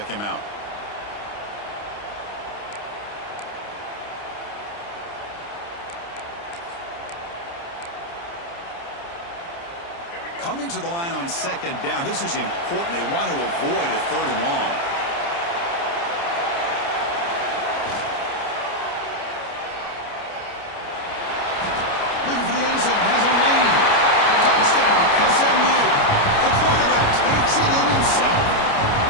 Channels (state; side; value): late; right; 29 ms